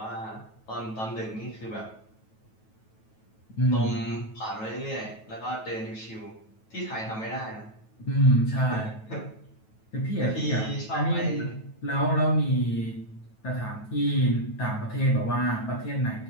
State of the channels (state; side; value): late; right; 9.2 ms